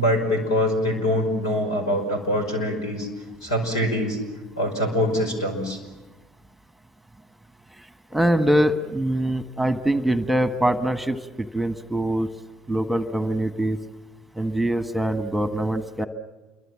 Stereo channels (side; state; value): both; normal; correlation 0.62